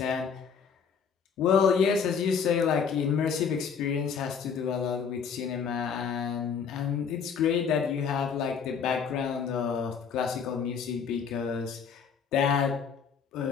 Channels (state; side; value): quieter; right; 6.6 dB